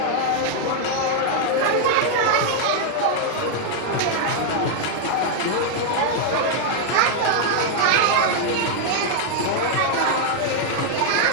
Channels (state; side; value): different; both; correlation 0.00